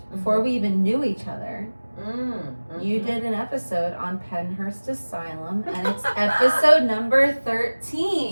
before we even knew each other. You did an episode on Pennhurst Asylum, and it's episode number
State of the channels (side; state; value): both; inverted; correlation -1.00